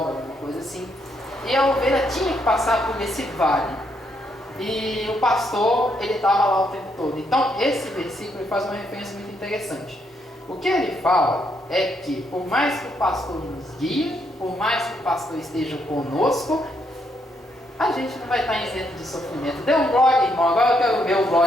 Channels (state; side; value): normal; both; correlation 0.75